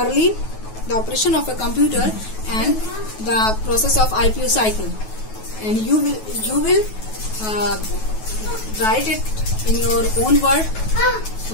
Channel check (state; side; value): late; right; 9.3 ms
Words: the operation of a computer and the process of IPO cycle, and you will write it in your own word,